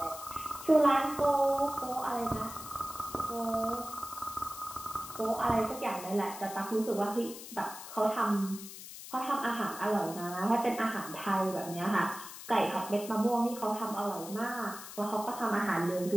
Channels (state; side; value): noise; left; hiss, 12 dB below the sound